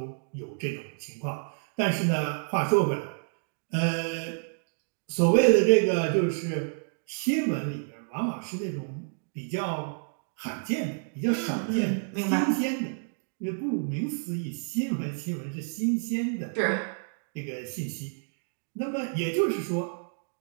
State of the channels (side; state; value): left; silent; digital silence